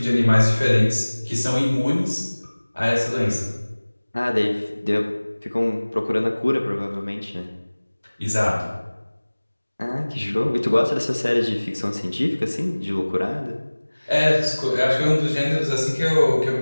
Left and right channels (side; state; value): both; inverted; correlation -1.00